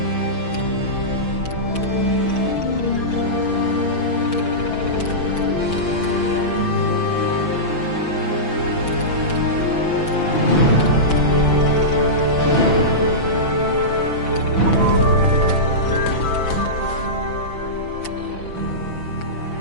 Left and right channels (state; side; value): late; right; 6.0 ms